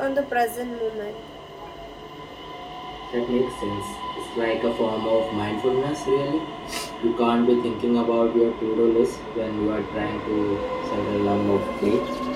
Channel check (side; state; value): both; identical; correlation 1.00